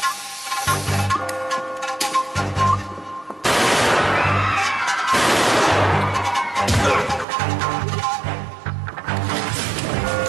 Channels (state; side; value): drops out; left; at 7.2 s